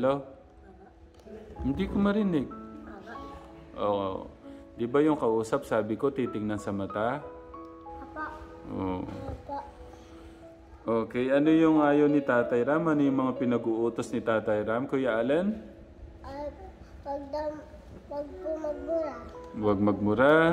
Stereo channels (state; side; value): identical; both; correlation 1.00